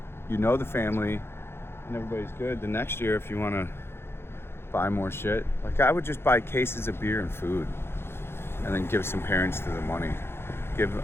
know the family and everybody's good, the next year, if you want to buy more shit, like, I would just buy cases of beer and food and then give some parents to the money. Give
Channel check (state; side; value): late; right; 0.12 ms